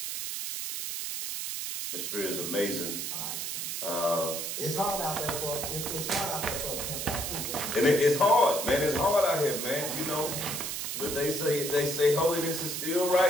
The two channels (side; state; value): right; noise; hiss, 4 dB below the sound